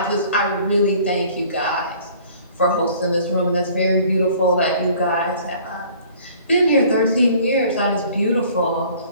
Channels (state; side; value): inverted; both; correlation -0.53